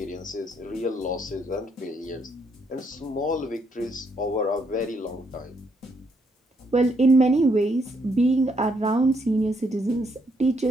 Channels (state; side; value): normal; both; correlation 0.74